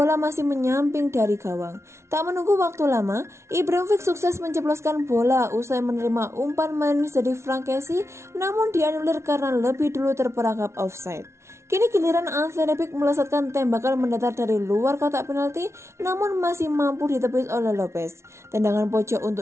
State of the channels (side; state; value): left; late; 0.13 ms